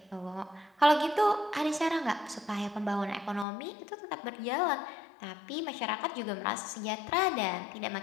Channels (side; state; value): right; drops out; at 3.5 s